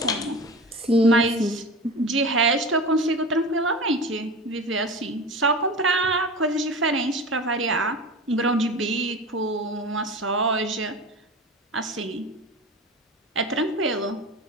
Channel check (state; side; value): normal; both; correlation 0.31